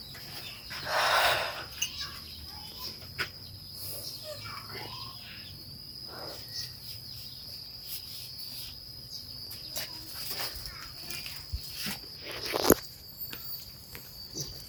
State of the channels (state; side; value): identical; both; correlation 1.00